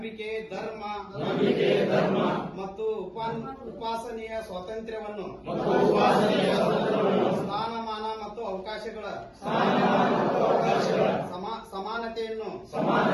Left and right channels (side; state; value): both; identical; correlation 1.00